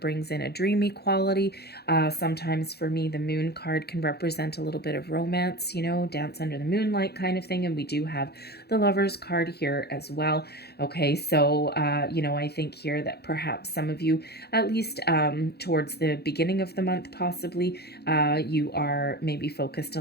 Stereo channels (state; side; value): late; right; 0.47 ms